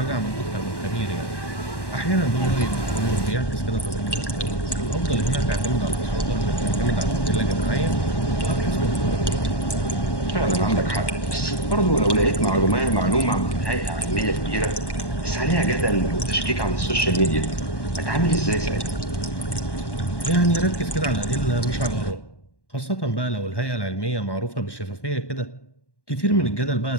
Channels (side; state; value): right; late; 1.1 ms